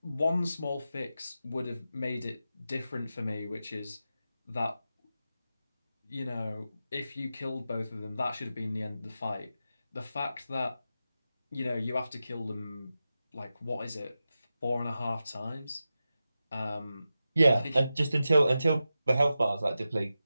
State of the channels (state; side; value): inverted; both; correlation -0.92